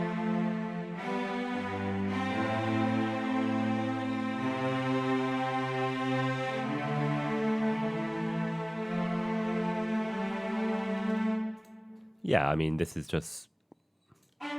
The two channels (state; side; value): identical; both; correlation 1.00